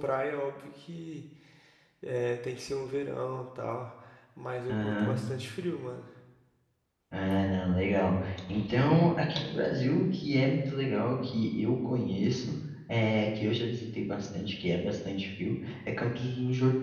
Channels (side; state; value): both; identical; correlation 1.00